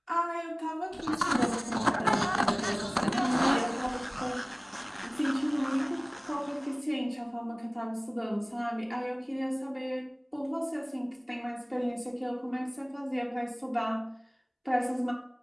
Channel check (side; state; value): both; identical; correlation 1.00